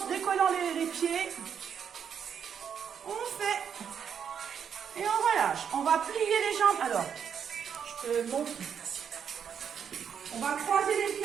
se décollant les pieds. On fait. Et on relâche. On va plier les jambes. Alors, je te montre. On va croiser les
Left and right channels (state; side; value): quieter; left; 7.7 dB